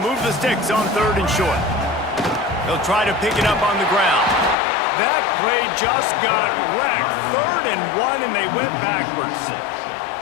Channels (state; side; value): drops out; right; at 4.5 s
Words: the sticks on 3rd and short. They'll try to pick it up on the ground. That play just got wrecked. 3rd and 1, and they went backwards.